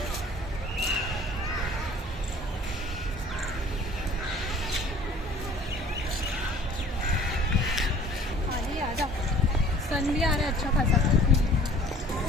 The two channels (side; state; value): both; normal; correlation 0.50